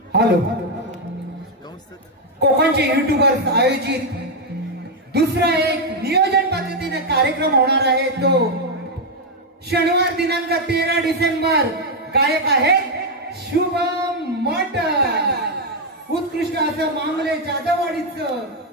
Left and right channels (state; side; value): normal; both; correlation 0.02